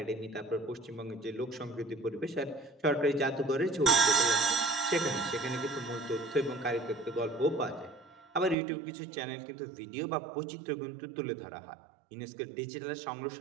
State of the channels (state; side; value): drops out; left; at 8.6 s